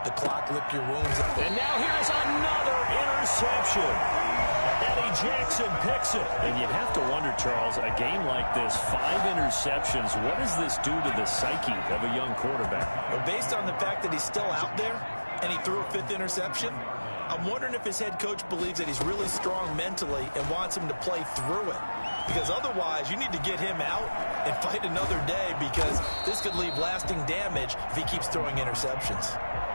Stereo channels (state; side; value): inverted; both; correlation -1.00